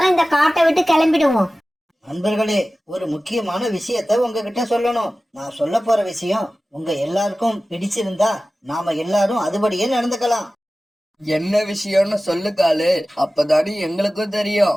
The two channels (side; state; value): both; normal; correlation 0.96